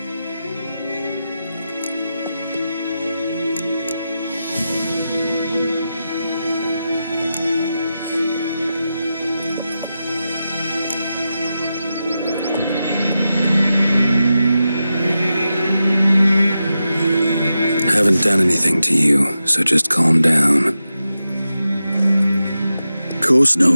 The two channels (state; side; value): inverted; both; correlation -0.90